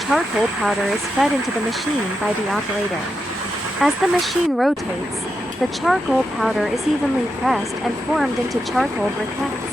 powder is fed into the machine by the operator. As the machine rotates, the charcoal powder is evenly pressed and formed into charcoal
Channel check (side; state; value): both; normal; correlation 0.86